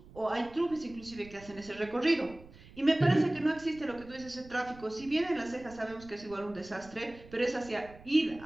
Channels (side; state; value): right; noise; rumble, 20 dB below the sound